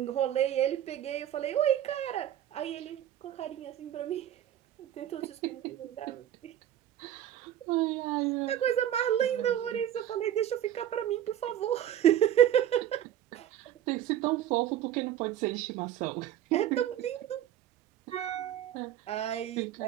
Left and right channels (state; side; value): quieter; left; 11.3 dB